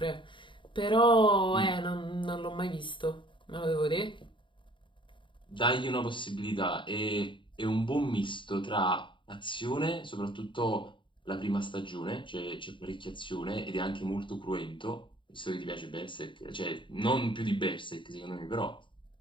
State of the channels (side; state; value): right; late; 0.24 ms